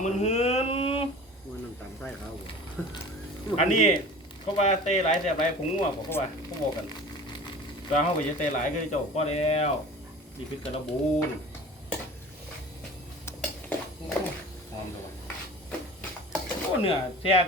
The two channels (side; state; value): both; normal; correlation 0.40